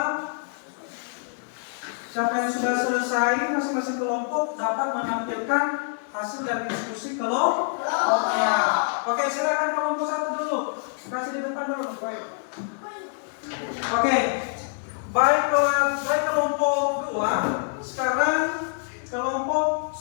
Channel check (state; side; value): silent; right; digital silence